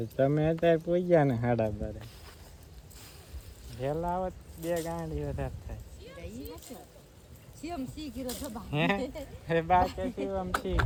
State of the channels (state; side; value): identical; both; correlation 1.00